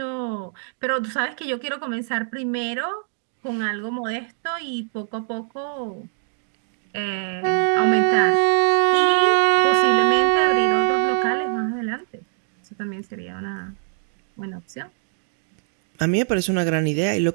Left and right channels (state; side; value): silent; left; 62 dB below the other